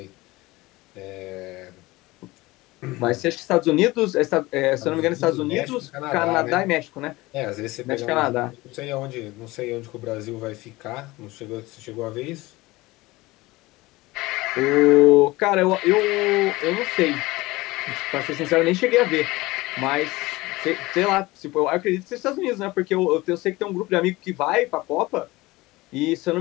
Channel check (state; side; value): quieter; right; 20.4 dB